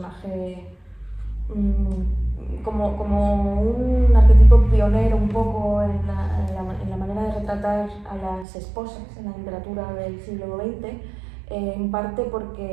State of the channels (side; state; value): left; drops out; at 8.5 s